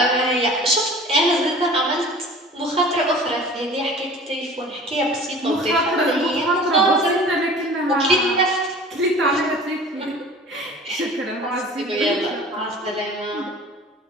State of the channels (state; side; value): normal; both; correlation 0.43